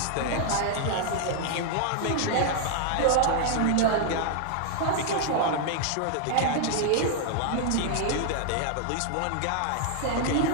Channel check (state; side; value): different; both; correlation 0.00